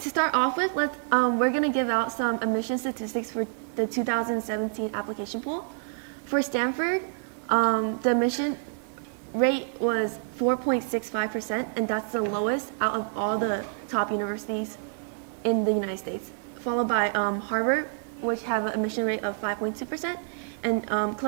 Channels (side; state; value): left; silent; digital silence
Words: start off with, we're going to give out some admission statistics for the 2017 application pool. For Stanford, the admission rate was 4.65%, and that's the lowest out of all the top universities in the United States, followed by Harvard, which have an admission rate of 5.2%, and